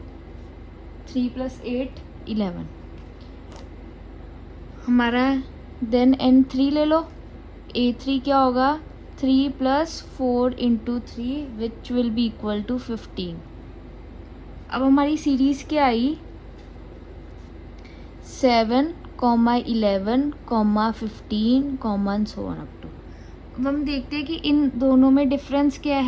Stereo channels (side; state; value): both; identical; correlation 1.00